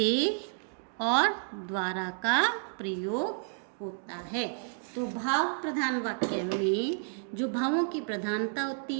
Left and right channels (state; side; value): silent; left; digital silence